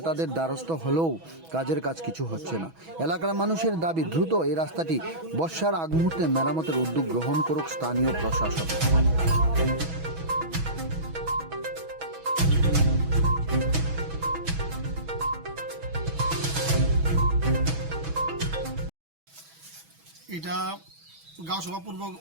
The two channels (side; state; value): left; late; 6.1 ms